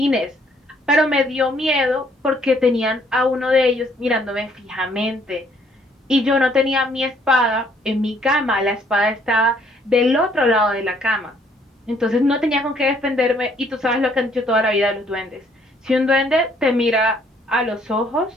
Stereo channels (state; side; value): normal; both; correlation 0.65